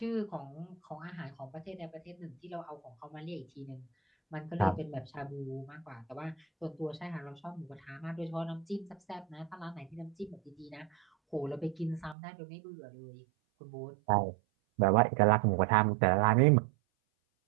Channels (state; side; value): drops out; left; at 12.2 s